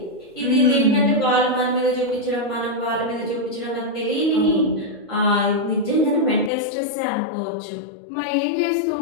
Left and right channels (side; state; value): right; drops out; at 6.5 s